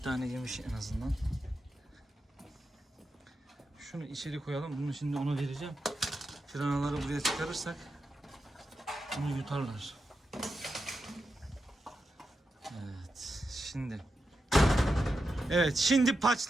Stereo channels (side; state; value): both; normal; correlation 0.89